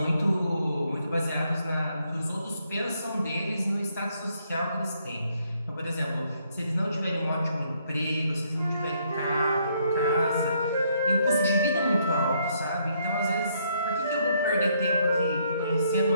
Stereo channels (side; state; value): both; inverted; correlation -0.71